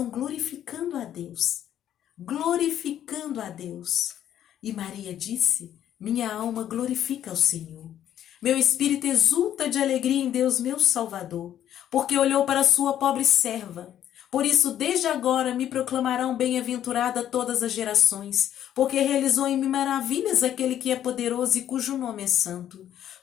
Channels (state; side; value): quieter; right; 10.9 dB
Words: glorificando a Deus. Glorificando a Deus. E Maria disse, minha alma glorifica ao Senhor. Meu espírito exulta de alegria em Deus, meu Salvador, porque olhou para a sua pobre serva. Por isso, desde agora me proclamarão bem-aventurada todas as gerações, porque realizou em mim maravilhas aquele que é poderoso e cujo nome é santo.